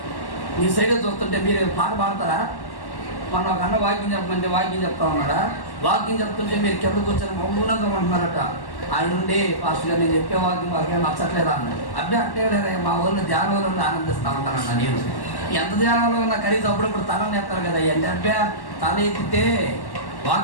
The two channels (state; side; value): late; right; 1.1 ms